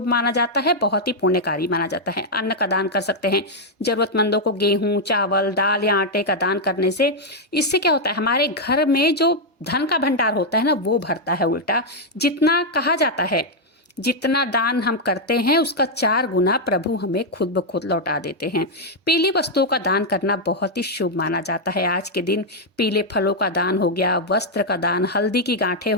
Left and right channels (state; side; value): normal; both; correlation -0.02